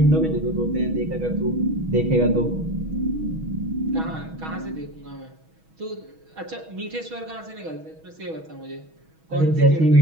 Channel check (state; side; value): late; left; 6.2 ms